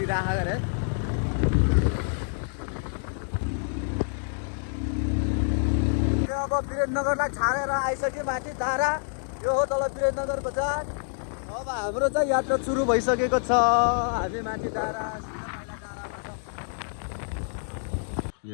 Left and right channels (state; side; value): silent; right; digital silence